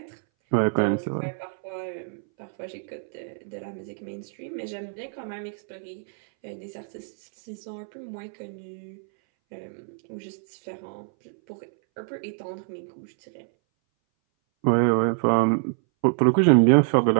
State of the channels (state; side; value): silent; left; 60 dB below the other